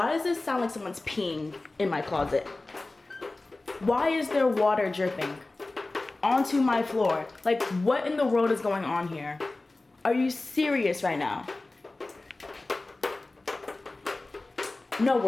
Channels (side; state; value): right; quieter; 3.1 dB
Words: does this sound like someone's peeing in my closet? Why is there water dripping onto my floor? Like, what in the world is going on here? Are you serious right now? No